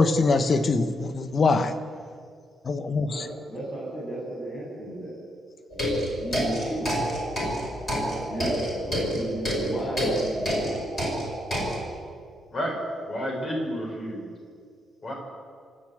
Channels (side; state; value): both; normal; correlation 0.79